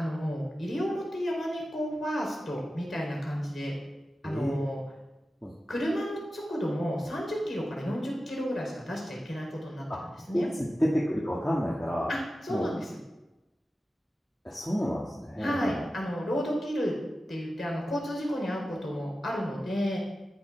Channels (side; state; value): both; normal; correlation 0.93